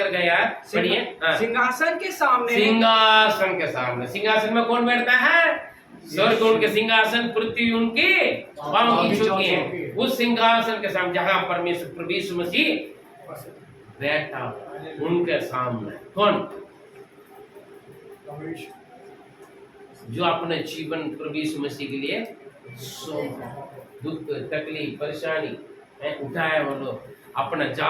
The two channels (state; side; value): identical; both; correlation 1.00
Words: गया, पढ़िए। सिंहासन के सामने, सिंहासन के सामने। सिंहासन में कौन बैठता है? स्वर्ग उनके सिंहासन, पृथ्वी उनके पांव की चौकी है। उस सिंहासन के सामने जहां परमेश्वर प्रभु यीशु मसीह बैठा, उनके सामने कौन? जो अपने जीवन प्रभु यीशु मसीह के लिए दुख, तकलीफ, परेशानी उठाया वो लोग। अपना